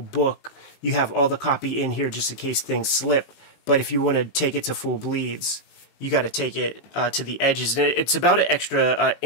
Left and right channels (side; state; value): right; late; 19 ms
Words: You have all the copy in here just in case things slip, but if you want to take it to full bleeds, you got to take it to the edges. And it's about an extra